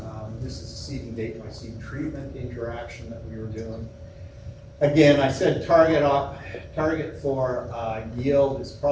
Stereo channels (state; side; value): identical; both; correlation 1.00